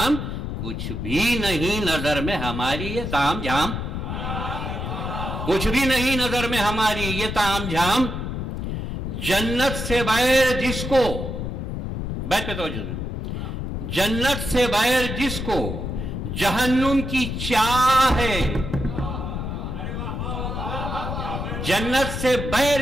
کچھ بھی نہیں نظر میں ہماری یہ تام جھام، کچھ بھی نہیں نظر میں ہماری یہ تام جھام، جنت سے بغیر جس کو، بیت پہ توجہ دیں، جنت سے بغیر جس کو جہنم کی چاہ ہے، جنت سے بغیر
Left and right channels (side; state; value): left; noise; rumble, 4 dB below the sound